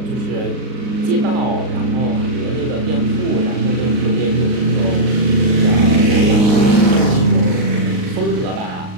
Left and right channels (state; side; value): late; left; 39 ms